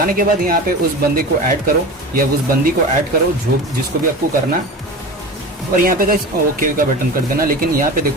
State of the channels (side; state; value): both; normal; correlation 0.31